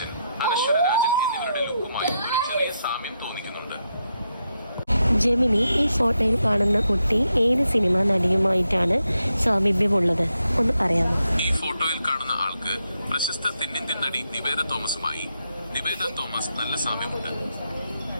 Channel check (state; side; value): inverted; both; correlation -0.83